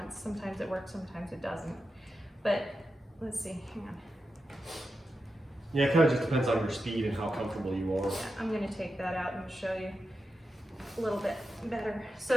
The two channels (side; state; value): both; normal; correlation 0.89